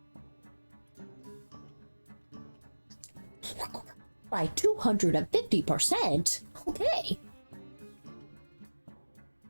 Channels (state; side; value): inverted; both; correlation -1.00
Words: By 250%? Okay.